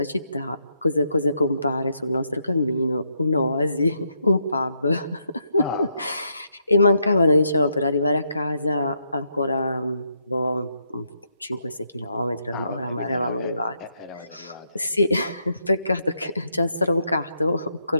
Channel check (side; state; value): both; inverted; correlation -0.78